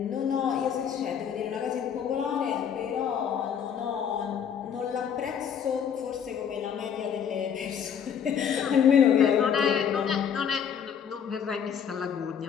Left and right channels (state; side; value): quieter; right; 8.0 dB